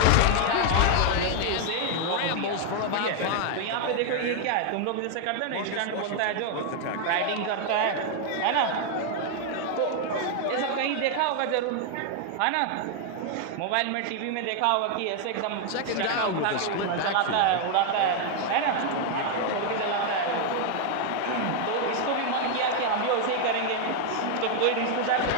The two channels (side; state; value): both; different; correlation 0.00